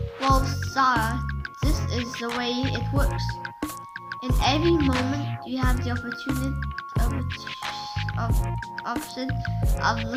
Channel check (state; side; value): identical; both; correlation 1.00